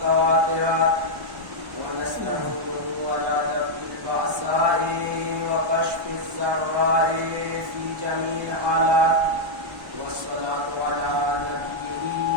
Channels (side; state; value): left; late; 1.1 ms